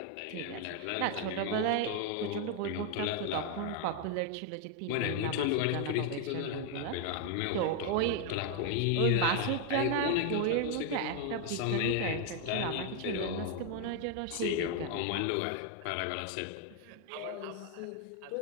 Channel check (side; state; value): both; different; correlation 0.01